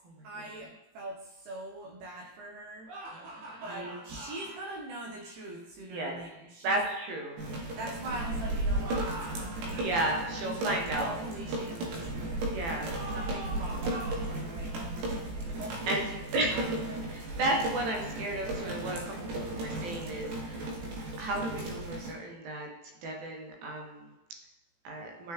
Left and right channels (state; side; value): late; left; 18 ms